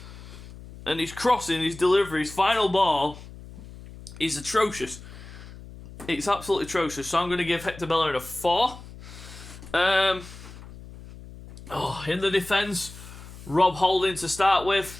And his crossing, his delivery, his final ball is atrocious. It's absolutely atrocious. So I'm going to give Hector Bellerin a 4. In the defence, Rob Holding to start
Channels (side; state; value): left; noise; hum, 16 dB below the sound